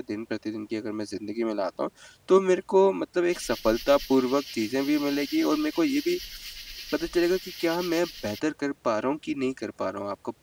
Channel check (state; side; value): identical; both; correlation 1.00